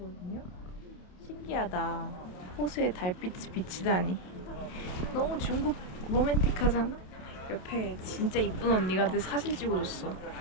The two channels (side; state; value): right; late; 28 ms